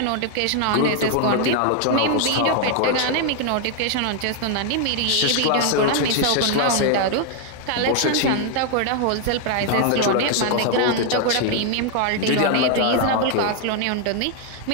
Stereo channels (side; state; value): both; different; correlation 0.00